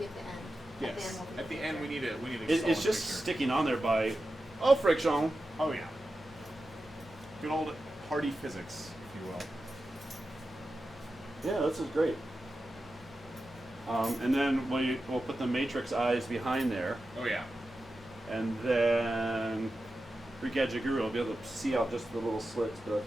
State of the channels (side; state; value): both; normal; correlation 0.92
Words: at the end. Yes. At the end, we need a It's solid just picture. sticking on there by friction. Oh yeah. Good old hardy physics, if you will. Yeah, this is great. And then we'll put the matrix eyes behind there, Oh yeah. and then Greek Gadget Guru will be able to see out just the little slits, but that's